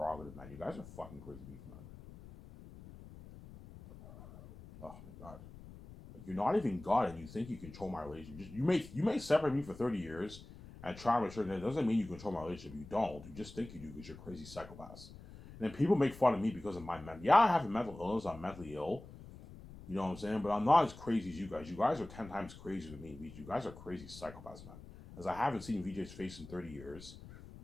man? You guys are fucking crazy people, man. Oh my god. Like, you're not even God, and you think you control my relationship. You may separate me for 30 years and try to assure that doesn't mean you control my relationship. You don't. You just think you do because you're crazy psychopaths. And then people make fun of me because of my mental. Yeah, I have a mental illness. I'm mentally ill. You know what I'm saying? But I'm not as crazy as you guys. You guys are 10 times crazier than me. You guys are crazy psychopaths, man. As I haven't seen VJ's face in 30 years,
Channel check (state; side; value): noise; left; rumble, 16 dB below the sound